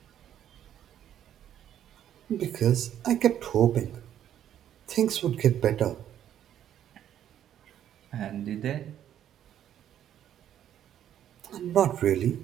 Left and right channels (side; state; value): left; quieter; 10.6 dB